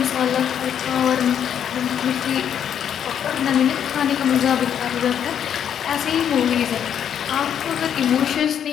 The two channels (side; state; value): right; quieter; 8.9 dB